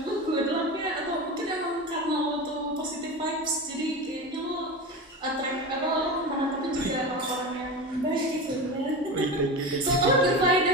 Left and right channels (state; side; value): normal; both; correlation 0.26